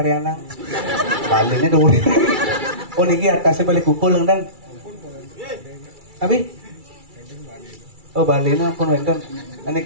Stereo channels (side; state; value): left; late; 2.3 ms